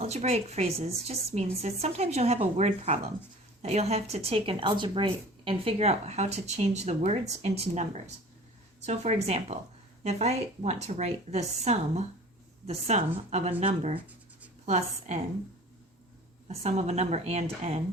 phrases just means that sometimes you'll have a word problem that you'll have to take an algebraic and figure out how to change the words into numbers. So for example, if I want to write the sum of a number plus n, a sum of a number and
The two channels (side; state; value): both; normal; correlation 0.44